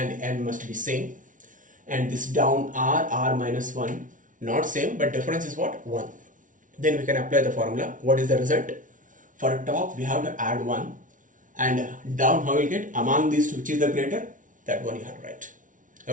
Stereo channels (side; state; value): left; late; 0.38 ms